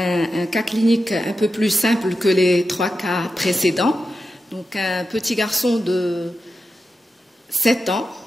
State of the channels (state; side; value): normal; both; correlation 0.90